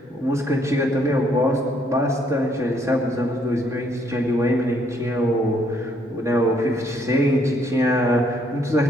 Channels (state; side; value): normal; both; correlation 0.69